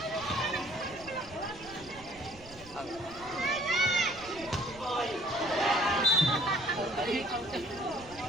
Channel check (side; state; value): right; noise; rumble, 20 dB below the sound